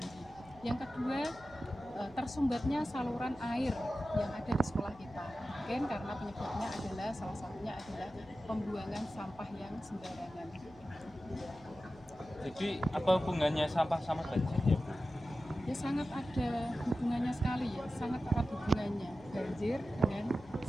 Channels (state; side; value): noise; left; hum, 24 dB below the sound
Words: Yang kedua, tersumbatnya saluran air yang ada di sekolah kita. Mungkin karena penyebabnya adalah salah satunya adalah pembuangan sampah yang sembarangan. Jadi apa hubungannya sampah sama banjir ya Bu? Ya sangat ada hubungannya sekali ya, sangat erat hubungannya banjir dengan